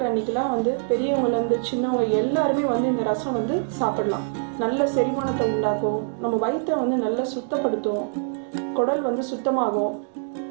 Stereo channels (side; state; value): left; silent; digital silence